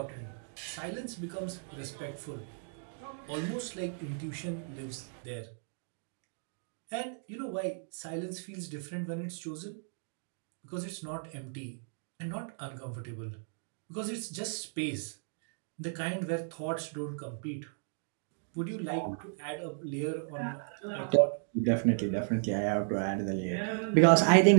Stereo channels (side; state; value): left; silent; digital silence